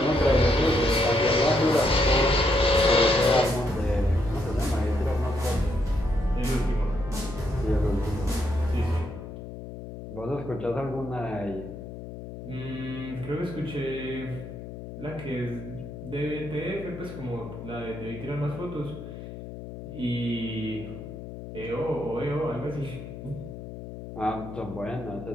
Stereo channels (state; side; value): noise; left; hum, 11 dB below the sound